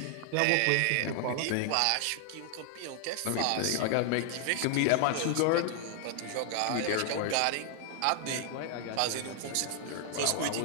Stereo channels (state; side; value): different; both; correlation 0.00